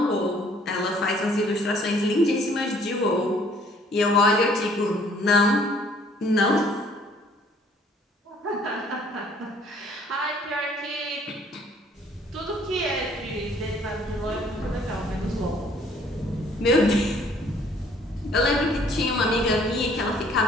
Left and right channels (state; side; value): normal; both; correlation 0.60